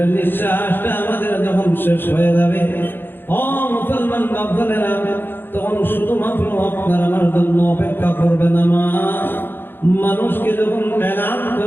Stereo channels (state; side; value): late; right; 0.10 ms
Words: নিঃশ্বাসটা আমাদের যখন শেষ হয়ে যাবে, ও মুসলমান বাপদাদেরা, তখন শুধুমাত্র আপনার আমার জন্য অপেক্ষা করবে নামাজ। মানুষকে যখন এলান